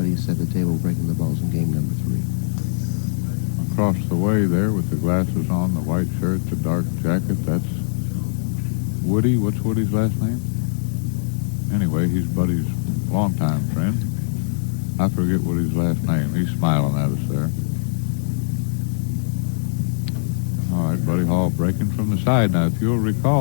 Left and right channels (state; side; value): silent; right; 64 dB below the other